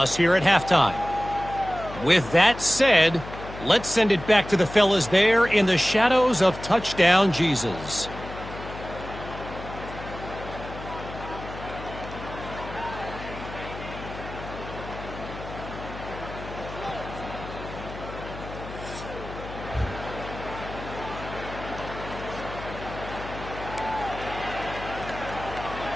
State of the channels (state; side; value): noise; left; hum, 12 dB below the sound